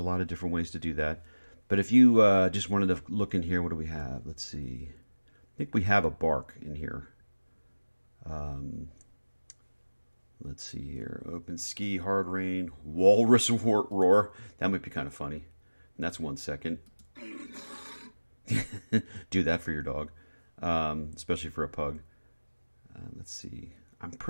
lot of different ways to do that. But if you just wanted to look in here, what do we have? Let's see. I think we have a bark in here. Let's see here. Open ski, hard rain, walrus roar. That might be kind of funny. And that's 1 second. Do that for your dog, especially for a pug. Let's see. I'm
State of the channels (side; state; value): both; inverted; correlation -1.00